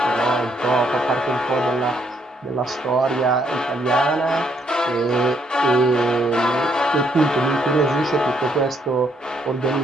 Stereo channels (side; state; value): both; normal; correlation 0.72